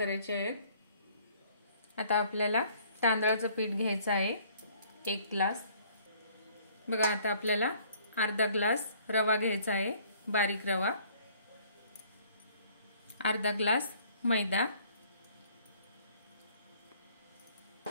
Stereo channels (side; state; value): both; inverted; correlation -0.59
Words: आहेत। आता आपल्याला तांदळाचं पीठ घ्यायचं आहे 1 ग्लास। बघा, आता आपल्याला अर्धा ग्लास रवा घ्यायचा आहे, बारीक रवा, अर्धा ग्लास मैदा।